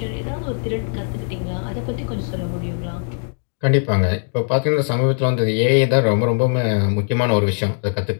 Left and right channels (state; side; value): silent; right; digital silence